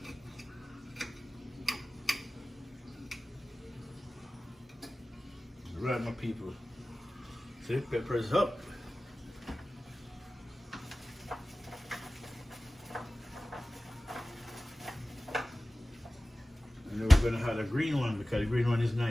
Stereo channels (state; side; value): normal; both; correlation 0.97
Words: Right, my people. See, pepper is up. And then we're gonna have a green one because the green one is